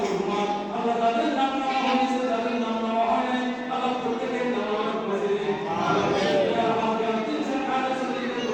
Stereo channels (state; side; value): identical; both; correlation 1.00